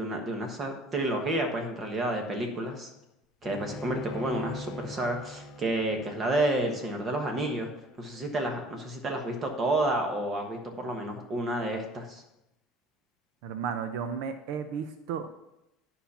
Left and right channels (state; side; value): normal; both; correlation 0.50